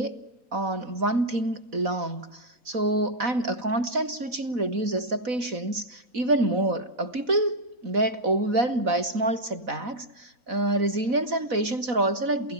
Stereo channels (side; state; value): left; late; 4.1 ms